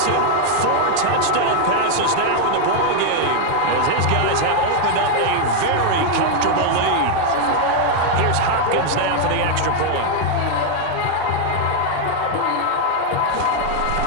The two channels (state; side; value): different; both; correlation 0.00